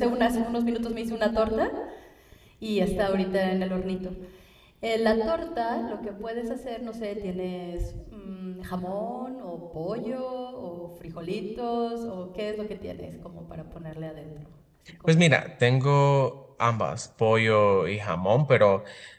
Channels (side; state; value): both; identical; correlation 1.00